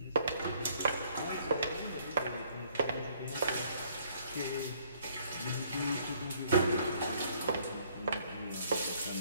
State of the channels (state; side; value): inverted; both; correlation -0.62